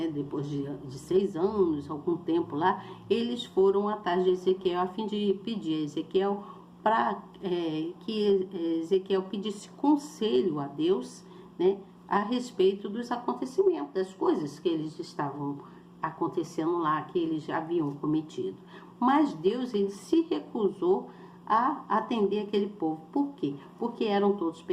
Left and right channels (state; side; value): identical; both; correlation 1.00